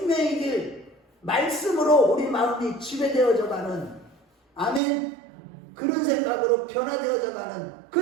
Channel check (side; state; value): left; drops out; at 4.8 s